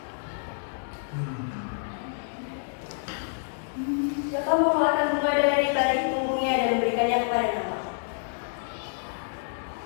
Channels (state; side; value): silent; right; digital silence